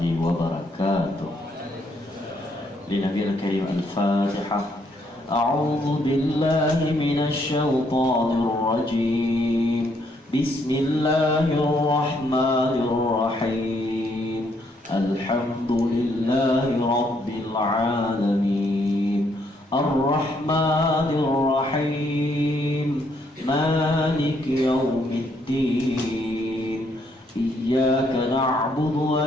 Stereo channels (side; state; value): both; normal; correlation 0.71